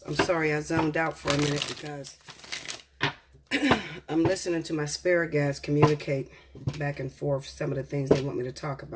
I'm sorry I zoned out for a minute because I'm listening to my spirit guides communicate back and forth some of the things they want me to talk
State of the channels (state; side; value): identical; both; correlation 1.00